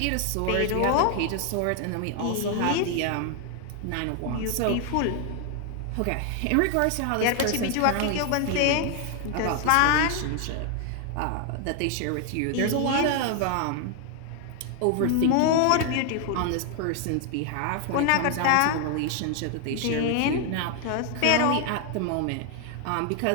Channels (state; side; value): different; both; correlation 0.00